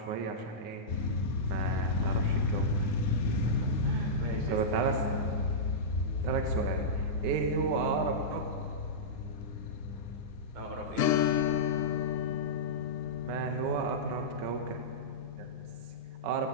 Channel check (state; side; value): late; left; 9.7 ms